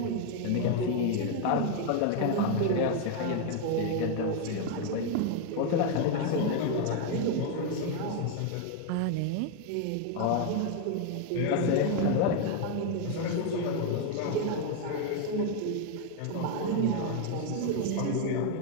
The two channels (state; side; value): different; both; correlation 0.01